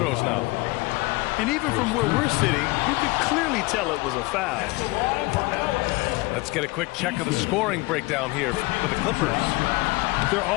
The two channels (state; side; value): quieter; right; 23.1 dB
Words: now. And even from where we're sitting, you could clearly tell it was a foul. Let's get a quick check of the scoring breakdown here for the Clippers. Their